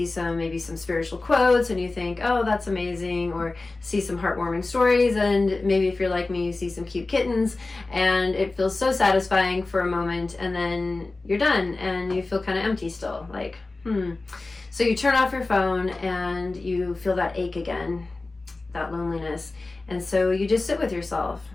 maybe some spiritual quotes and you think, oh, that's amazing, or see some heartwarming stories, and maybe if you're like me, you see some cute kittens and it feels so satisfying for a moment, and then you're done and you feel kind of empty still, like, So you turn off your phone and you feel that ache again, that loneliness. And so you just sit with yourself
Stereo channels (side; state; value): right; quieter; 3.3 dB